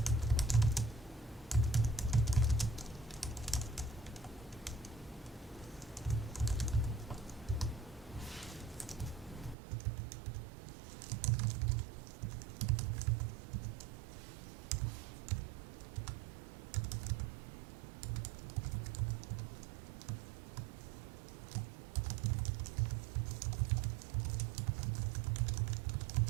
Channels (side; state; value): left; drops out; at 9.6 s